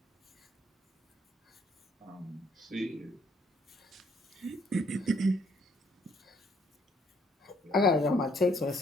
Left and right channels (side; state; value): both; normal; correlation 0.66